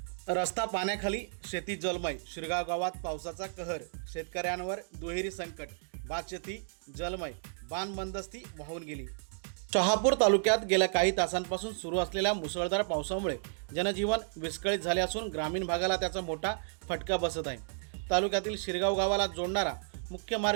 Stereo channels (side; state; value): left; silent; digital silence